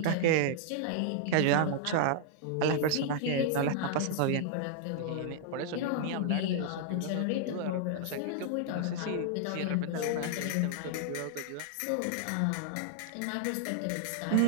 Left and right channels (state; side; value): different; both; correlation -0.01